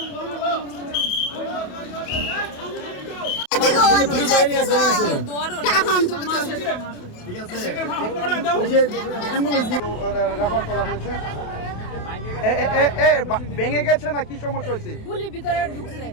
রেফার করা হয়েছে। ভেঙে গেছে না কি সমস্যা হয়েছে? গুলি ভিতরে ঢুকছে,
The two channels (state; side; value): late; right; 28 ms